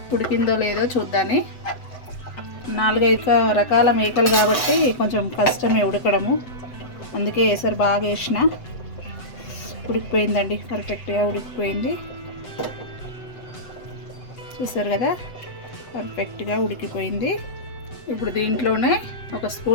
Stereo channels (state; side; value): late; right; 7.8 ms